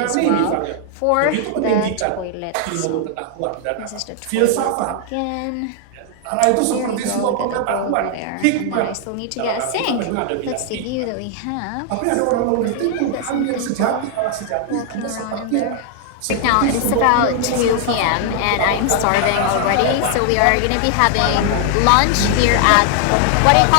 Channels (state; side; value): different; both; correlation 0.00